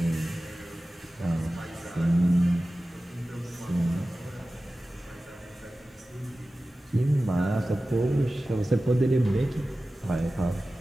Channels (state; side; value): normal; both; correlation 0.95